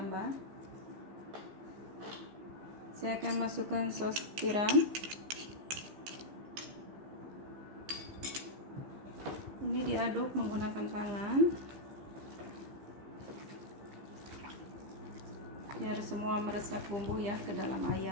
Saya akan masukkan sos tiram. Ini diaduk menggunakan tangan biar semua meresap bumbu ya ke dalam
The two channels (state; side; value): late; left; 15 ms